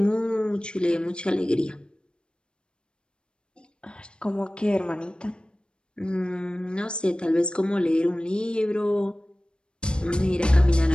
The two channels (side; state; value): right; late; 0.053 ms